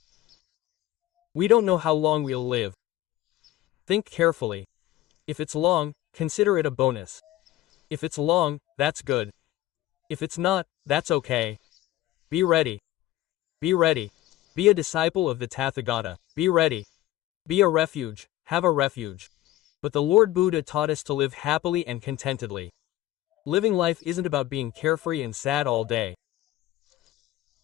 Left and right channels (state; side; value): quieter; right; 15.0 dB